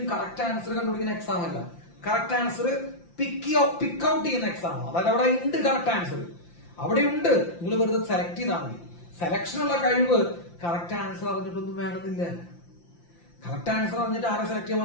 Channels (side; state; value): right; late; 5.8 ms